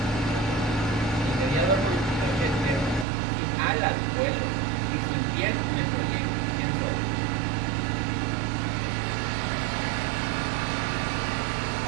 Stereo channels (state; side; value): drops out; left; at 3.1 s